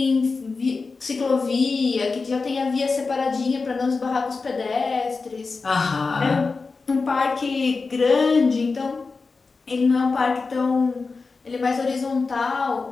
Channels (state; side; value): quieter; right; 4.3 dB